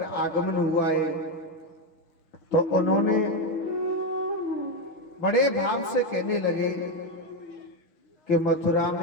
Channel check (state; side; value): late; right; 6.2 ms